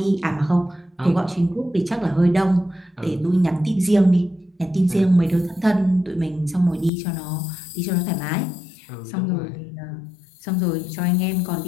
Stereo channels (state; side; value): drops out; right; at 6.9 s